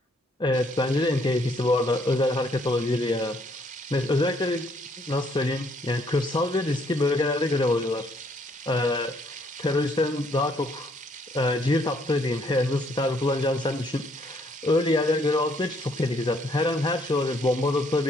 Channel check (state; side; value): normal; both; correlation 0.68